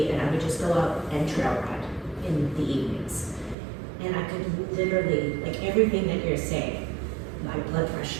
and I would just go out and trail ride in the evenings. And I could literally, like everything that you're saying, my blood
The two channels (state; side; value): drops out; left; at 3.6 s